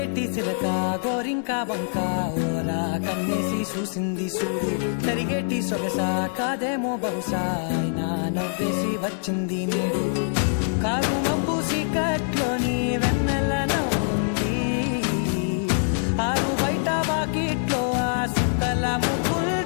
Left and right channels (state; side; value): silent; right; digital silence